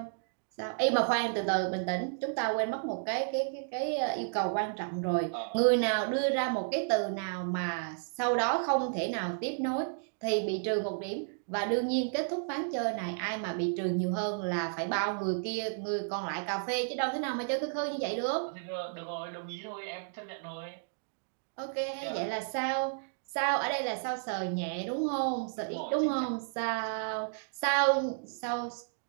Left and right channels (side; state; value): left; silent; digital silence